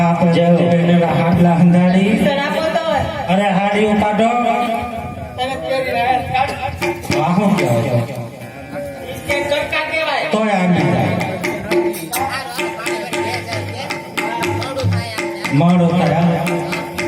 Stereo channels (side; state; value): both; identical; correlation 1.00